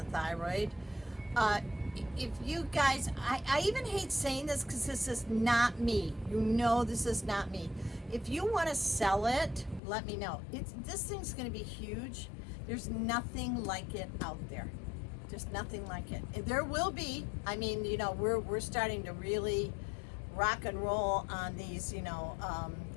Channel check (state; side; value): drops out; right; at 9.8 s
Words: thyroid. If you guys, I even hate saying this because this is not me. You know, this is not me. If you want to sell it, let me know. This thing's going to be huge. There's nothing like it out there. Just nothing like it. There will be. I mean, you know, we're starting to really rock and roll on these, you know,